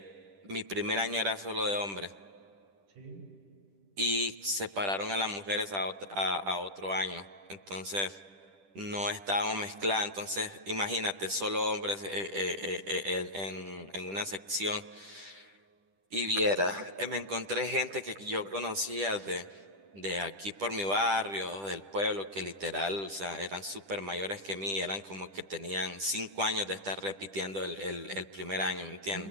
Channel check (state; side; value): late; left; 10 ms